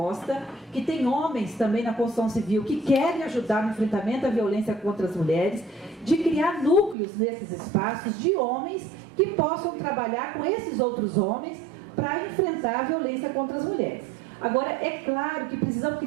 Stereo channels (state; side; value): drops out; left; at 7.0 s